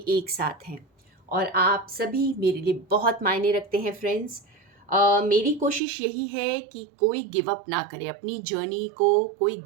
साथ हैं और आप सभी मेरे लिए बहुत मायने रखते हैं फ्रेंड्स। मेरी कोशिश यही है कि कोई गिव अप ना करे, अपनी जर्नी को कोई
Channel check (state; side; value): drops out; left; at 5.8 s